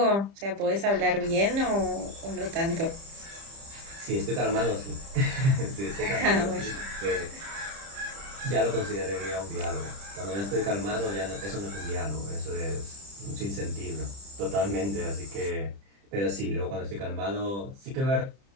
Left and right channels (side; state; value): left; late; 30 ms